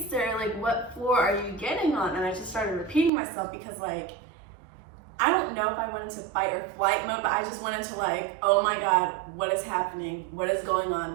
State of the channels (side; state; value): left; drops out; at 3.1 s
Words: sir, what floor are you getting on? And I just started repeating myself because I don't know if I went into fight or flight mode, but I just went into oh my god, what is happening? What is going